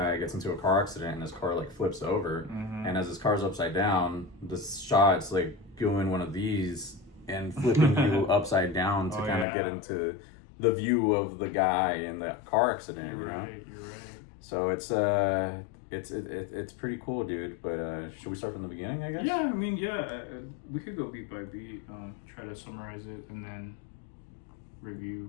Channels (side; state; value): right; drops out; at 9.5 s